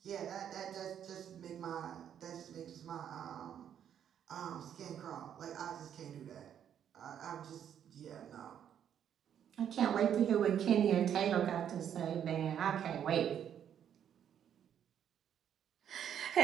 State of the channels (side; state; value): left; quieter; 9.3 dB